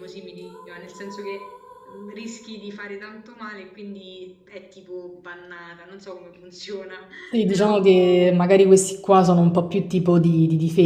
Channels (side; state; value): both; identical; correlation 1.00